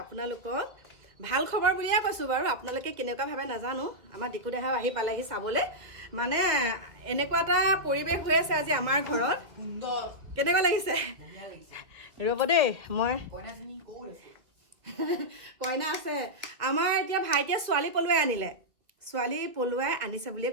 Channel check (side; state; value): left; late; 1.9 ms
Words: ভাল খবৰ বুলিয়ে কৈছোঁ বাৰু আপোনালোকে কেনেকুৱা ভাবে নাজানো আমাৰ ডিকু দেহাও আহি পালেহি চাবলৈ মানে এনেকুৱা এটা পৰিৱেশ হৈ আছে আজি আমাৰ ঘৰত কেনেকুৱা লাগিছে ৰ'ব দেই মই কইনা আছে আমাৰ এতিয়া ভাইটিয়ে ছোৱালী পলুৱাই আনিছে বুলিয়ে